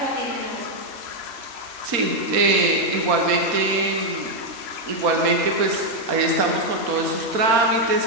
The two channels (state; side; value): late; left; 4.2 ms